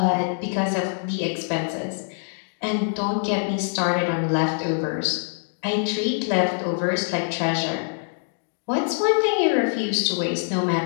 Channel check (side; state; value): right; silent; 62 dB below the other